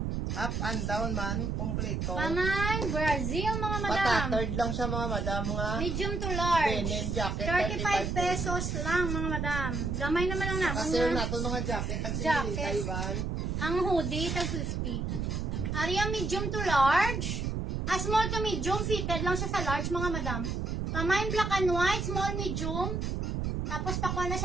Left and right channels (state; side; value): noise; right; rumble, 1 dB below the sound